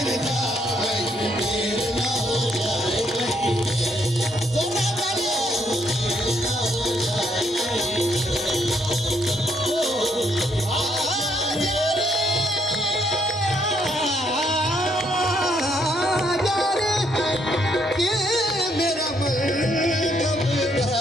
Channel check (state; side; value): normal; both; correlation 0.72